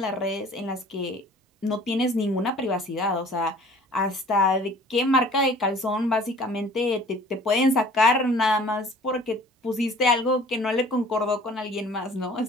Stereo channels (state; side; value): normal; both; correlation 0.50